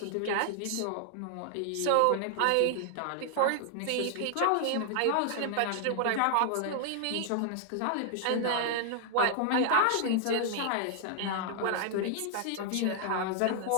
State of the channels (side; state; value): both; different; correlation 0.00